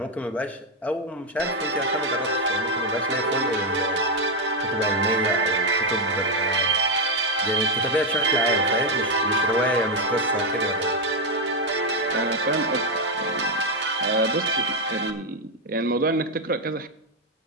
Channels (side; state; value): both; normal; correlation 0.04